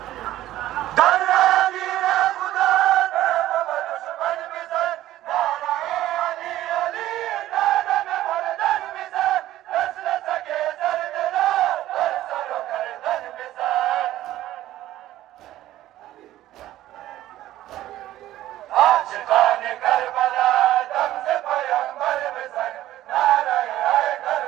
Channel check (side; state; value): left; quieter; 14.3 dB